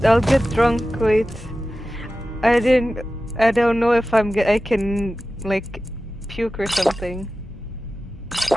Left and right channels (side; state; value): both; normal; correlation 0.94